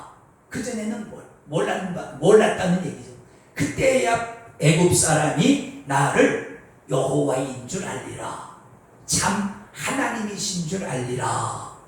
그전에는 몰랐다는 얘기죠. 그때야 애굽 사람이 나를 여호와인 줄 알리라. 참 하나님이신 줄 알리라.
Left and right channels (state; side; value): identical; both; correlation 1.00